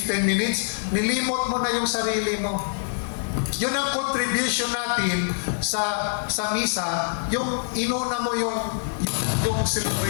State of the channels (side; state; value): right; silent; digital silence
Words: minutes, nilimot mo na yung sarili mo. Yun ang contribution natin sa misa, yung inuna mo yung